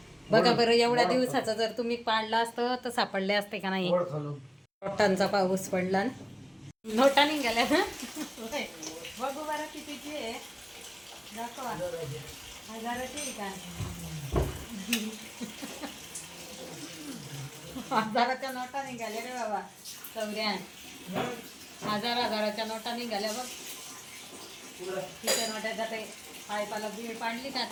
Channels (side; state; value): both; identical; correlation 1.00